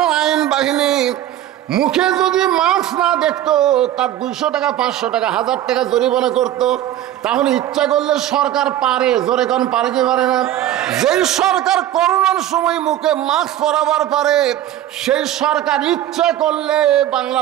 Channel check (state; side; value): quieter; left; 12.5 dB